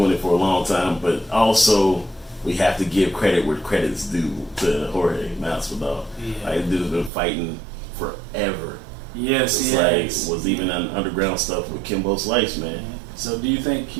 it for a long time. But also, we have to give credit where credit's due to Jorge Masvidal. Yeah. Like, dude's been fighting forever. Yes, it's like was even on underground stuff with Kimbo Slice, man. So, do you think he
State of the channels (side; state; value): left; drops out; at 7.1 s